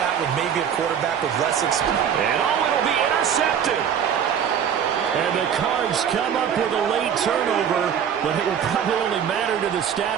with maybe a quarterback with less experience. And it'll be intercepted. And the Cards come up with a late turnover, but it will probably only matter to the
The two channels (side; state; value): left; quieter; 8.3 dB